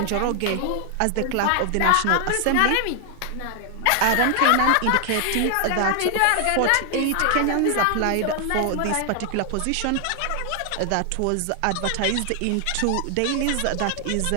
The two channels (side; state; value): both; different; correlation 0.00